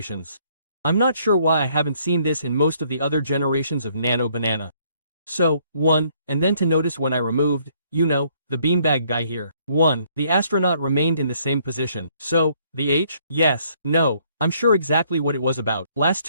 I'm not sure why I haven't seen this in most of the other generations of Nano Banana. So, 1, and then to notice when I removed, you know, the beanbag guy here. 1. The astronaut remained in the same position. So, the H? Yes, no, I'm sure exactly what it was about. Last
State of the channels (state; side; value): inverted; both; correlation -0.66